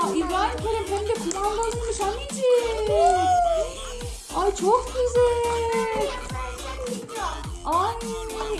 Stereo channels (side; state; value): both; identical; correlation 1.00